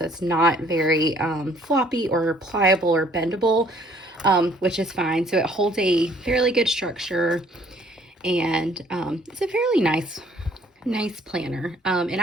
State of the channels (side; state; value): both; normal; correlation 0.59